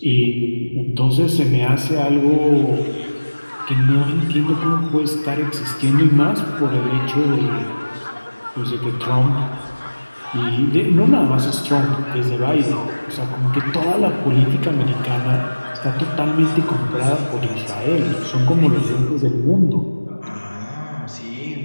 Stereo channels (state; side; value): inverted; both; correlation -1.00